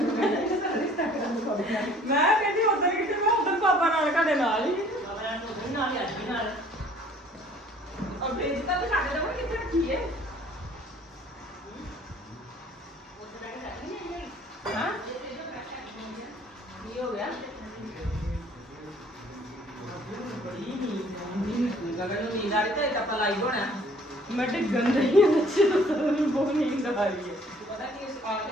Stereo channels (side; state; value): both; normal; correlation 0.56